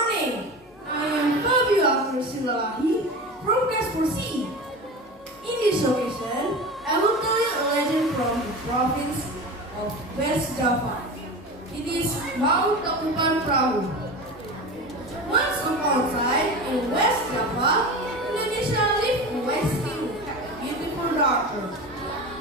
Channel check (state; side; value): normal; both; correlation 0.29